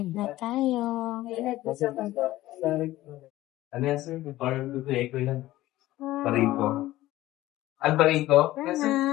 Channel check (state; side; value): quieter; right; 16.1 dB